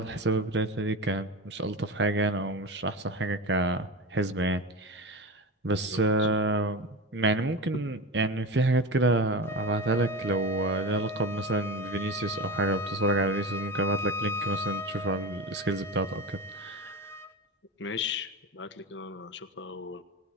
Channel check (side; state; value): both; normal; correlation 0.26